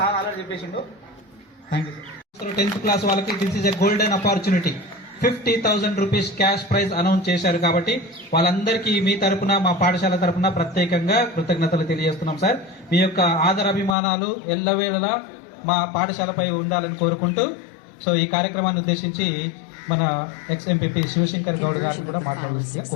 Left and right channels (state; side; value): drops out; right; at 14.0 s